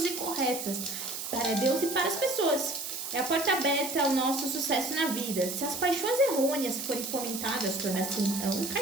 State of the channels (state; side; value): noise; right; hiss, 6 dB below the sound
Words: e corretas para Deus e para as pessoas. É a porta aberta ao nosso sucesso na vida. Se as paixões errôneas forem fomentadas, torna-se então um